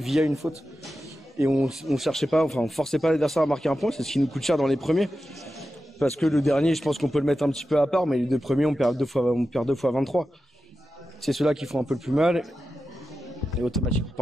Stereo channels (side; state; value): both; normal; correlation 0.91